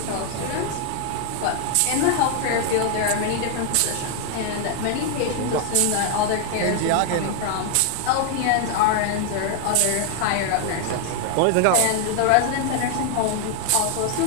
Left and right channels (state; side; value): different; both; correlation 0.00